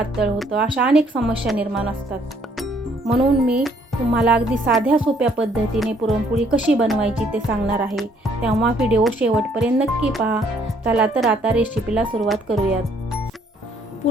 होतं, अशा अनेक समस्या निर्माण असतात. म्हणून मी तुम्हाला अगदी साध्या सोप्या पद्धतीने पुरणपोळी कशी बनवायची ते सांगणार आहे. तेव्हा व्हिडिओ शेवटपर्यंत नक्की पहा. चला तर आता रेसिपीला सुरुवात करूयात.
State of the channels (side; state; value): both; normal; correlation 0.65